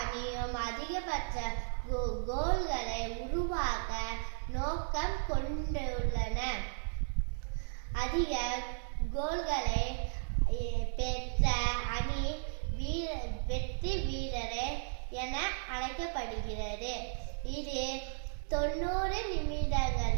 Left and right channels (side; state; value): left; silent; digital silence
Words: அதிகபட்ச கோல்களை உருவாக்க நோக்கம் கொண்டுள்ளன. அதிக கோல்களை பெற்ற அணி வெற்றி வீரரே என அழைக்கப்படுகிறது. இது 90